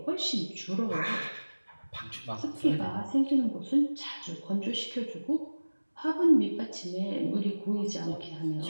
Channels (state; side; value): inverted; both; correlation -1.00